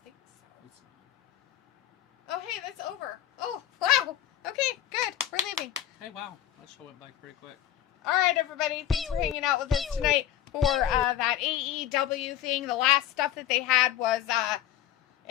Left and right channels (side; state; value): right; quieter; 11.8 dB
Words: think so. It's not. Oh, hey, that's over. Oh, wow. Okay, good. We're leaving. Hey, wow. That show went by pretty quick. All right, everybody. Thanks for hanging out with us tonight for that AEW thing. The last stuff that they had was